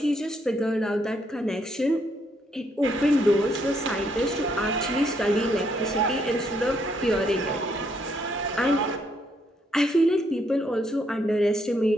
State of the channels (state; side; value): normal; both; correlation 0.73